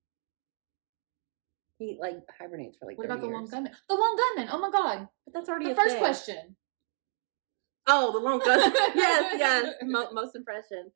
he like hibernates for like. What about years. the Lone Gunman? The Lone Gunman! Oh my god! But that's already the first question. Oh, the Lone Gunman! yes. Most impression.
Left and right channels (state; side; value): silent; left; digital silence